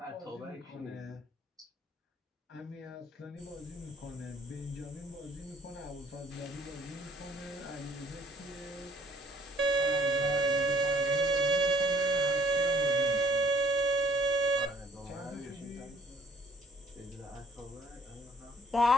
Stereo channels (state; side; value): normal; both; correlation 0.60